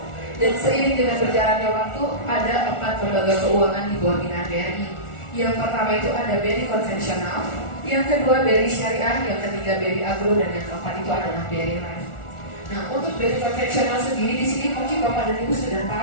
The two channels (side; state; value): right; late; 1.4 ms